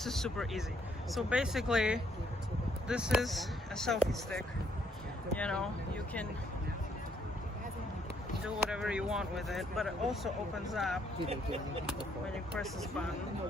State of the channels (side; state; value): both; normal; correlation 0.70